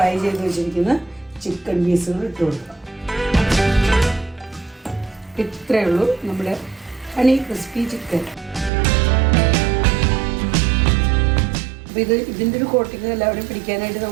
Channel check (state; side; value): drops out; left; at 8.7 s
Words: ചെയ്ത് വെച്ചിരിക്കുന്ന ചിക്കൻ പീസുകൾ ഇട്ട് കൊടുക്കാം. ഇത്രയേ ഉള്ളൂ നമ്മുടെ ഹണി ക്രിസ്പി ചിക്കൻ. അപ്പോൾ ഇതിൻ്റെ ഒരു കോട്ടിങ് എല്ലാവരും പിടിക്കാനായിട്ട്